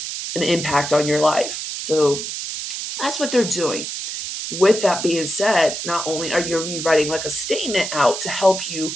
an impact on your life. So that's what they're doing. With that being said, not only are you rewriting like a statement out to help you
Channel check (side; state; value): right; noise; hiss, 5 dB below the sound